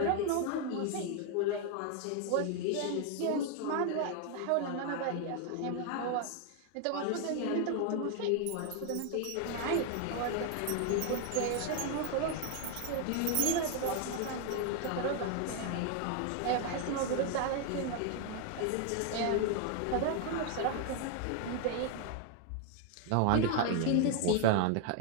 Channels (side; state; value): both; different; correlation 0.00